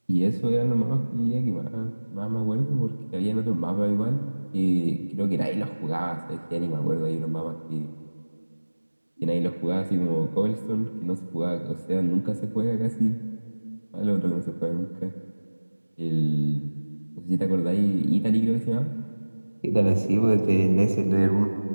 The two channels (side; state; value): both; inverted; correlation -1.00